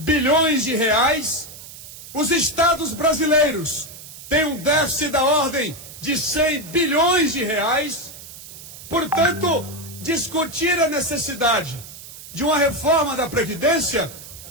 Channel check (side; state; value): right; noise; hiss, 15 dB below the sound